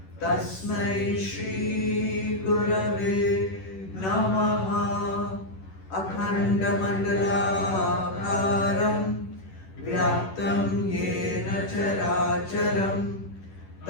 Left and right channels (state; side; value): late; right; 11 ms